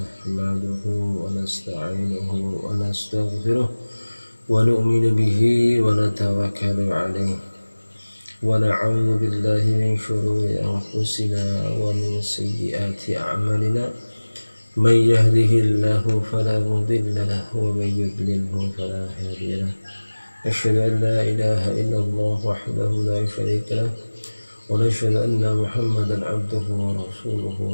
wa nasta'inuhu wa nastaghfiruh wa nu'minu bihi wa natawakkalu alayhi wa na'udzu billahi min shururi anfusina wa min sayyiati a'malina. Man yahdihillahu fala mudilla lahu wa man yudlilhu fala hadiya lahu. أشهد أن لا إله إلا الله وحده لا شريك له ونشهد أن محمدا عبده ورسوله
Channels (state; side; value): inverted; both; correlation -1.00